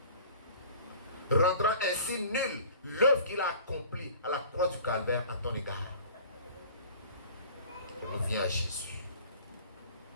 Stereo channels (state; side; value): inverted; both; correlation -0.45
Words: Rendant ainsi nulle l'œuvre qu'il a accomplie à la croix du calvaire à ton égard. On revient à Jésus.